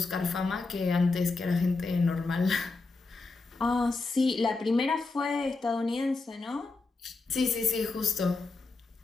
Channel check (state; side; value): quieter; right; 3.7 dB